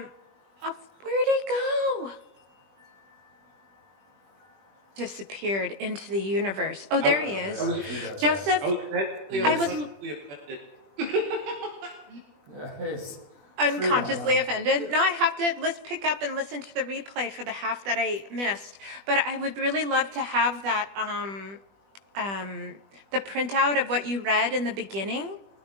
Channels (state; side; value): late; left; 20 ms